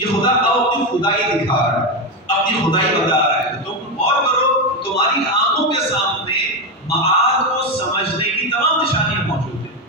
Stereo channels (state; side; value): normal; both; correlation 0.11